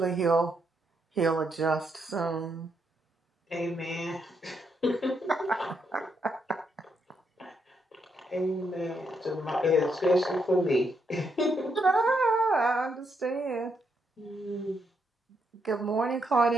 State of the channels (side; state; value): both; normal; correlation 0.78